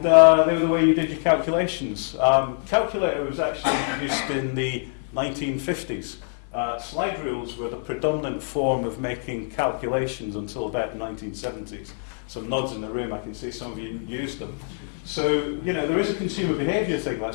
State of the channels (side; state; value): right; silent; 59 dB below the other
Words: they were the way you did your calculations. Calculator was actually introduced in the 1950s. Slide rules were the predominant form of making calculations until about the 1970s. Some nods in the room, I can see some of you used them. So, you know, there is a consumer behaviour thing